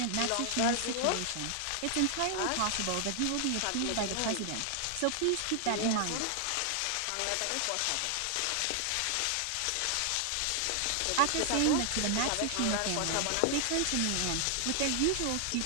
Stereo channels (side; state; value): both; different; correlation 0.00